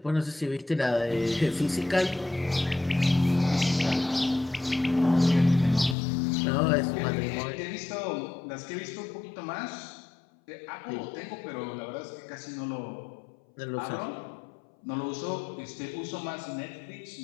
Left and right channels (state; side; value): drops out; right; at 6.0 s